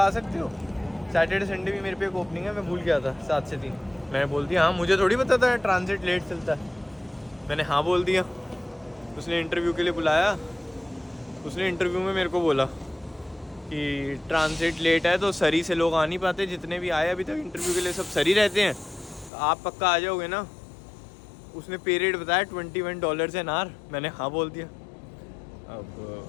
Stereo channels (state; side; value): drops out; right; at 19.3 s